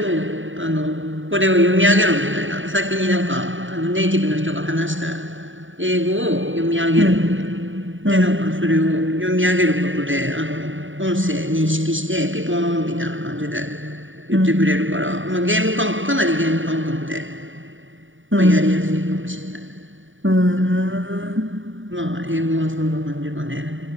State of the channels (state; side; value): late; left; 0.57 ms